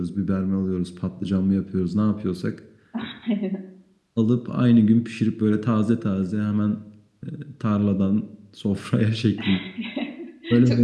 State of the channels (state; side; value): identical; both; correlation 1.00